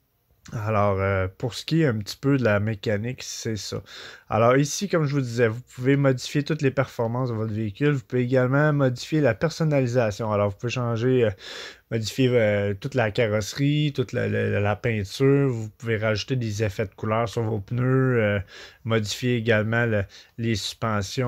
Alors, pour ce qui est un petit peu de la mécanique, c'est ça. Alors ici, comme je vous disais, vous pouvez modifier toutes les performances de votre véhicule. Vous pouvez également modifier la personnalisation. Alors, vous pouvez changer, modifier toute la carrosserie, toute la peinture. Vous pouvez rajouter des effets de couleur sur vos pneus. Modifier également les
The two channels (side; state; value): both; identical; correlation 1.00